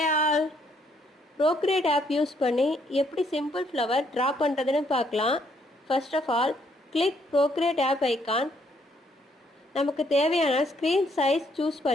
all, Procreate app use பண்ணி எப்படி simple flower draw பண்ணுறதுன்னு பார்க்கலாம். First of all click Procreate app icon. நமக்கு தேவையான ஸ்க்ரீன் சைஸ் சூஸ்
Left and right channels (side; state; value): both; normal; correlation 0.70